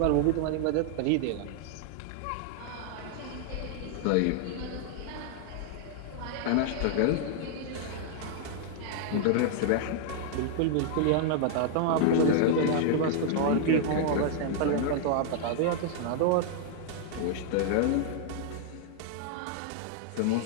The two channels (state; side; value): different; both; correlation -0.01